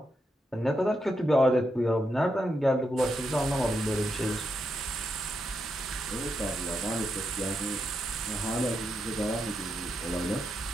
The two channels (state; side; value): normal; both; correlation 0.83